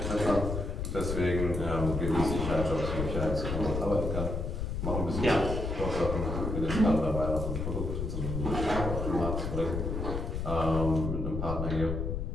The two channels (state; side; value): noise; left; rumble, 3 dB below the sound